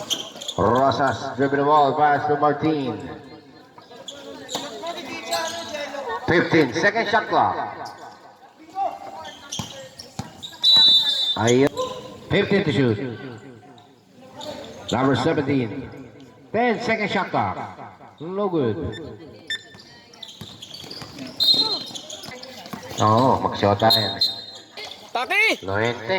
Rosas dribble the ball. Pass to Martin. 15-second shot clock. Ayun. 15 to shoot. Number 17. 10-second shot clock. No good. Oo, mag-shota na yan. Taki! Loente.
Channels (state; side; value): identical; both; correlation 1.00